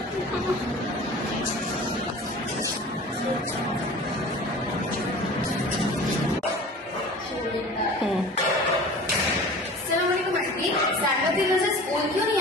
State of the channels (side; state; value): both; normal; correlation 0.40